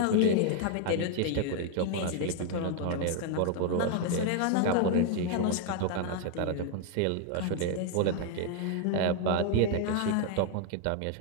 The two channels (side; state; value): both; different; correlation 0.00